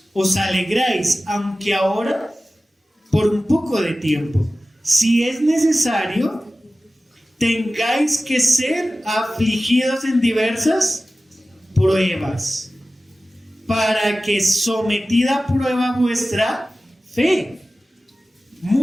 os alegráis, aunque ahora por un poco de tiempo, si es necesario, tengáis que ser afligidos en diversas pruebas, para que sometida a prueba vuestra fe,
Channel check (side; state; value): both; normal; correlation 0.96